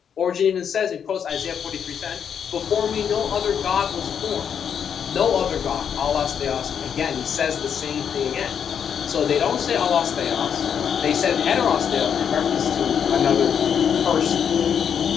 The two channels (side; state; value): right; quieter; 7.8 dB